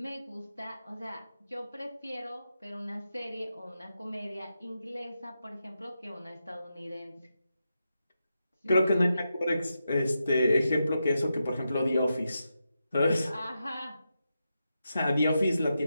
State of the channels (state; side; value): inverted; both; correlation -0.87